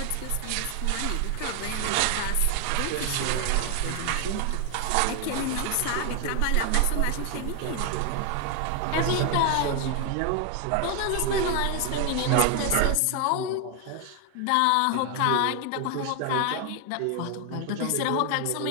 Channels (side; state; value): both; different; correlation 0.01